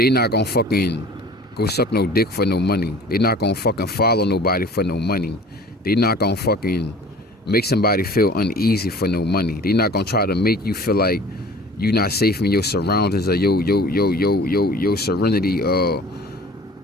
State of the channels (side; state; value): both; normal; correlation 0.46